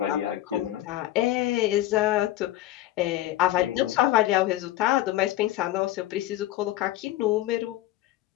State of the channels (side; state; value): right; quieter; 14.9 dB